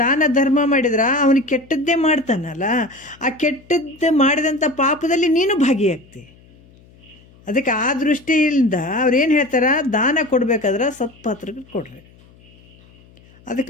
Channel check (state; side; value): noise; left; hum, 27 dB below the sound